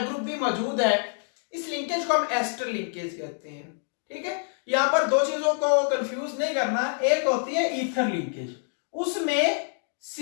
ग्रुप भी मौजूद है, इस लिंकेज को हम एस्टर लिंकेज कहते हैं। ठीक है, यहां पर दो चीजों को कंफ्यूज नहीं करना। एक होती है ईथर लिंकेज, उसमें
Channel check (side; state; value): right; silent; 60 dB below the other